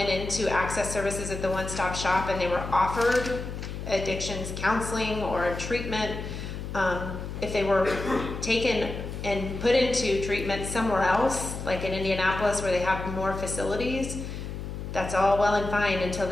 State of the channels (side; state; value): left; noise; hum, 7 dB below the sound